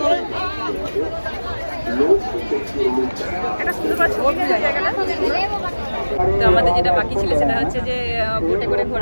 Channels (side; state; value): both; inverted; correlation -1.00